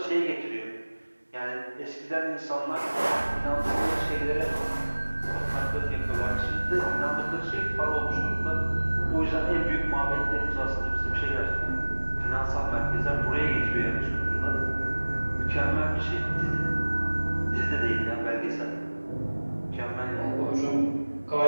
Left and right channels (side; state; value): both; inverted; correlation -1.00